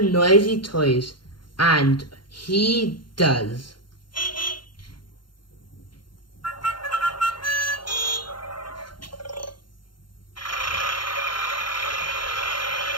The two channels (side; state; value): right; late; 0.72 ms